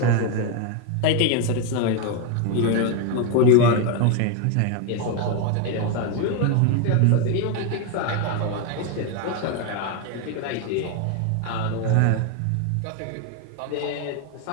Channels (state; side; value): different; both; correlation 0.01